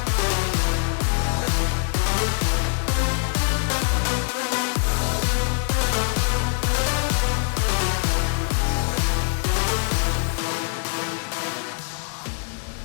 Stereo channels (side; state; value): right; silent; 57 dB below the other